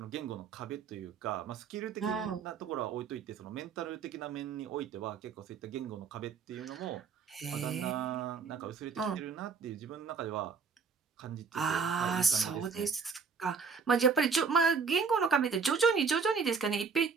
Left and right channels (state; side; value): quieter; left; 5.5 dB